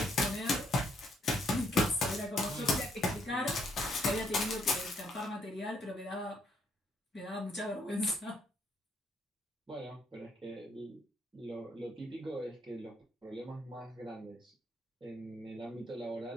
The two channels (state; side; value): normal; both; correlation 0.71